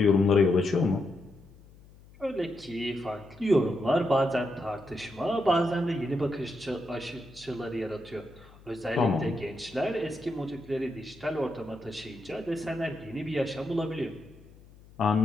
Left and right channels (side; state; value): left; noise; hum, 23 dB below the sound